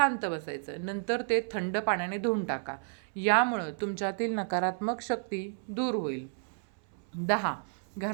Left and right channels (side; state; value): left; silent; 57 dB below the other